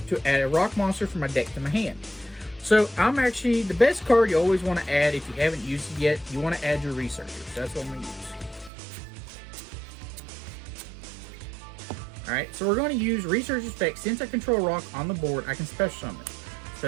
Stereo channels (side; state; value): left; drops out; at 8.7 s